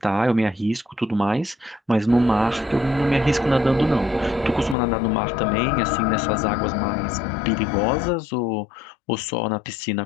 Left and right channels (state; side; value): drops out; right; at 4.8 s